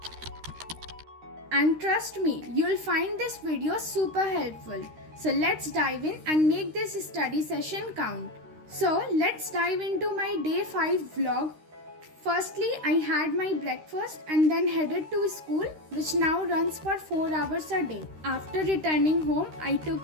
And trust me, you'll find this video super helpful. So let's dive in and make this study session count. So let's dive into my day 5 vlog. Firstly, I had my breakfast and then headed to school, which now runs for 4 hours a day. After returning home, I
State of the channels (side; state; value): left; late; 13 ms